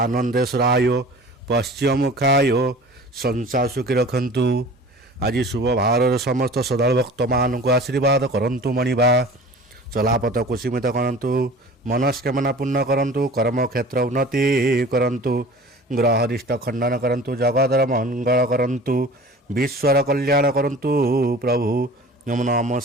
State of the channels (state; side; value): normal; both; correlation 0.42